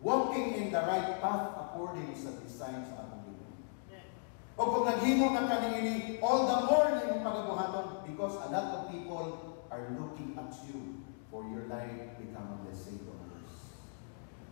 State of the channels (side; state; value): right; silent; digital silence